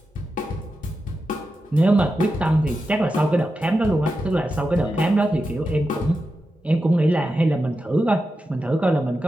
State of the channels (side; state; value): both; normal; correlation 0.90